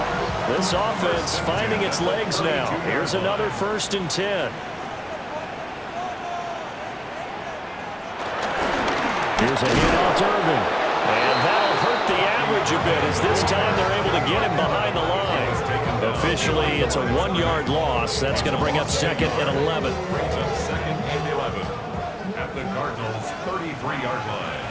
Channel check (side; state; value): both; identical; correlation 1.00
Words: This offense finding its legs now. Here's another 1st and 10. Here's a handoff to Irvin. And that'll hurt the average a bit as this time they're able to get him behind the line. Officially, it's a 1-yard loss. That's going to bring up 2nd and 11. Brings up 2nd and 11 at the Cardinals' 33-yard line.